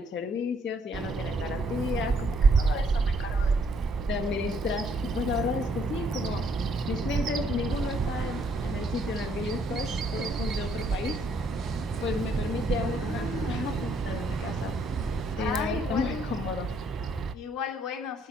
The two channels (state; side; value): normal; both; correlation 0.68